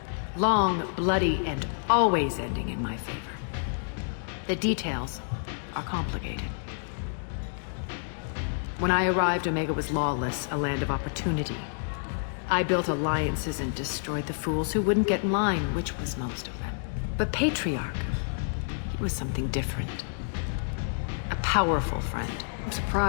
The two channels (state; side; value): silent; right; digital silence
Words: Long, bloody, and always ending in my favor. The details are complicated. When I arrived, Omega was lawless, a land of opportunity. I built alliances and destroyed the fools who wouldn't get in line, which was most of them. But Patriarch, he was something different. A powerful friend. I'm